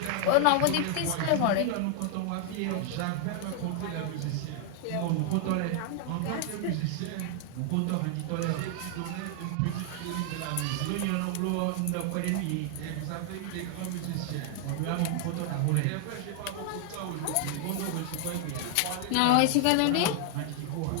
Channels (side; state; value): both; different; correlation 0.00